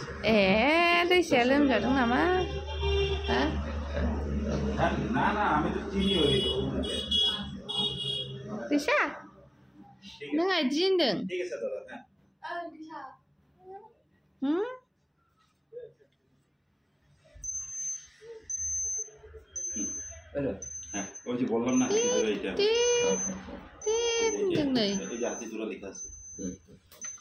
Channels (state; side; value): identical; both; correlation 1.00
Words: দিছে লোমজাদों নামা হ্যাঁ না না আমি তো চিনি ওই দিশা नों आइदिनदों ঠিক আছে দাদা হ্যাঁ दिशा হ্যাঁ ওই যে বললাম না এইটা এই যে হাতি জোড়া লেখা আছে